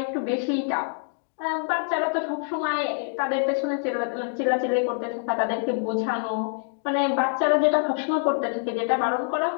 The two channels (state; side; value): silent; right; digital silence